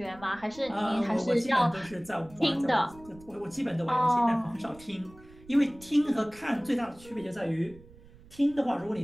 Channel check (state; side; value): noise; right; rumble, 23 dB below the sound